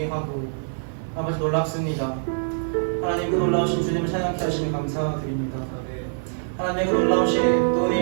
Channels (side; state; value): left; silent; digital silence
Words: 아버지 놀랍습니다. 하나님, 그 놀라우신 주님을 찬양케 하시니 감사드립니다. 하나님, 그 놀라우신 또